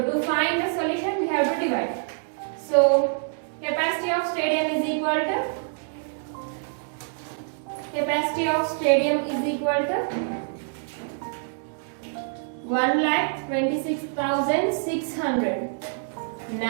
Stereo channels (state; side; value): silent; left; digital silence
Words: to find the solution we have to divide. So capacity of stadium is equal to 1,26,600.